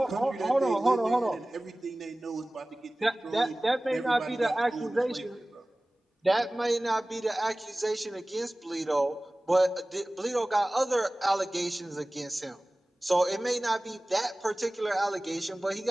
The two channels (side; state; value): both; normal; correlation 0.98